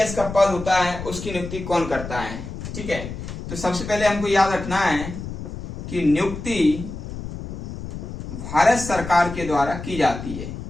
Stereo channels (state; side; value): noise; left; rumble, 9 dB below the sound